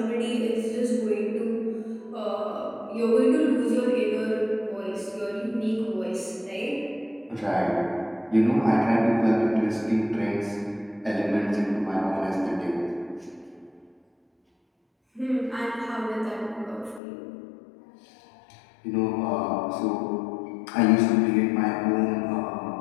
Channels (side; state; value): right; drops out; at 17.0 s